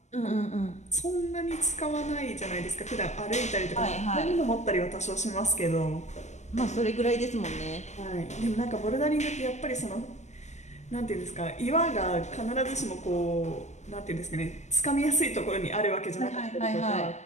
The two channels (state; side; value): late; right; 0.33 ms